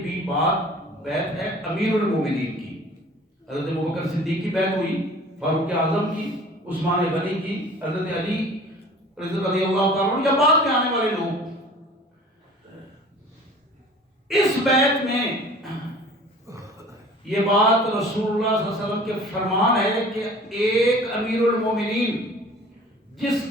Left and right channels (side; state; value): both; normal; correlation 0.46